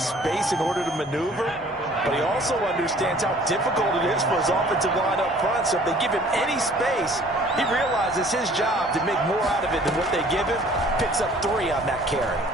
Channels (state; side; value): normal; both; correlation 0.53